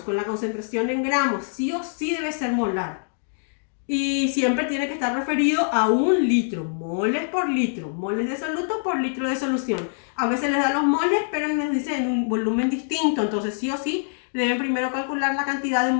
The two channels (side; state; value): right; silent; digital silence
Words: con la concentración en gramos. Sí o sí debe ser molar. Y siempre tiene que estar referido a 1 litro, moles por litro, moles de soluto por litro de solución. A veces les da los moles, pero nos dice en un volumen distinto, entonces sí o sí deben primero calcular la cantidad de